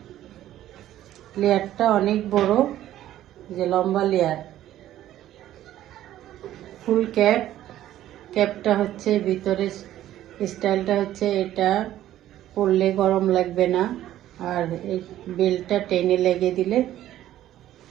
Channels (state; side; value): quieter; left; 13.0 dB